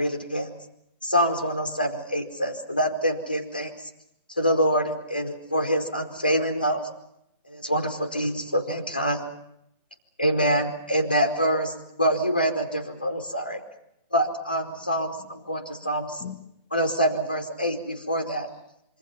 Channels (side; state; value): both; inverted; correlation -0.53